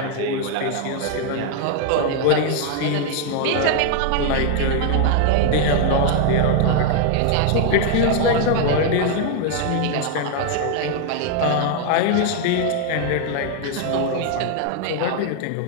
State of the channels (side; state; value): both; different; correlation 0.00